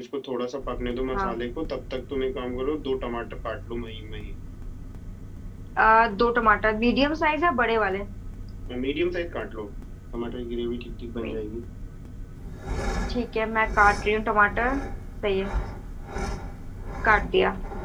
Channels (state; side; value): identical; both; correlation 1.00